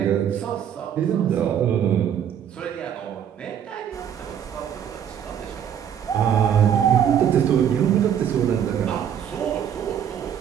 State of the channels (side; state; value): left; quieter; 9.0 dB